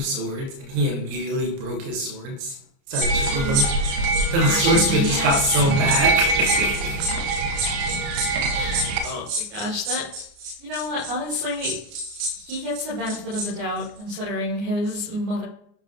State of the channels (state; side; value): late; left; 29 ms